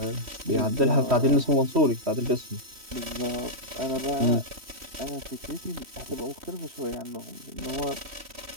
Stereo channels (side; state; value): left; late; 3.1 ms